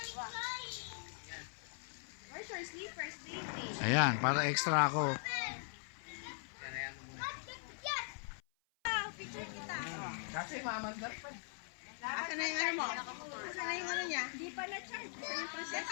Where's your sleepers, baby? Ayan, para extra ako. Kasi mamandar pa. Asan na yung ano mo? Asan na yung ano niya? Di pa na-charge. Ito yung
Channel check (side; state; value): right; silent; 51 dB below the other